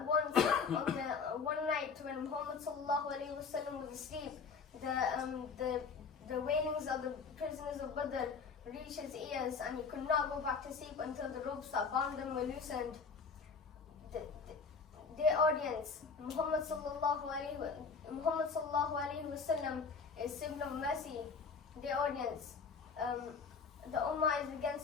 night when Muhammad sallallahu alaihi wasallam was asleep, the wailings of the prisoners of Badr reached his ears, and he could not go back to sleep until the ropes that bound them were loosened. Dear audience, Muhammad sallallahu alaihi wasallam is symbol of mercy. Dear audience, the Ummah is against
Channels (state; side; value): quieter; right; 5.3 dB